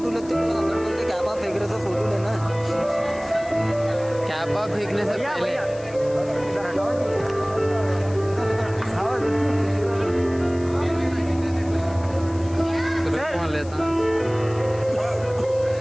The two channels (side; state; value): left; noise; hiss, 22 dB below the sound